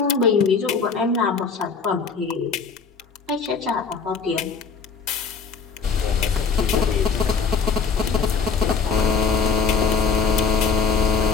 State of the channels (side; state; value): right; quieter; 5.3 dB